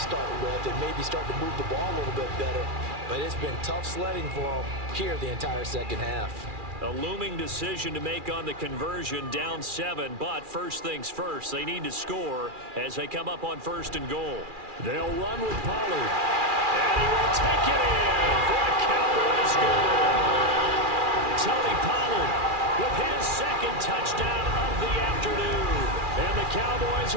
with and maybe start to move the ball a little bit better. But it's been tough sledding for them here the entire second half. A looming decision to make on the conversion, down 7, but first things first, they need to score as they come up on 1st and goal. They'll run with Pollard, and he will take it in for a Cowboys score. Tony Pollard with his 2nd touchdown of the afternoon. And the Cowboys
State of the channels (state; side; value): late; left; 2.4 ms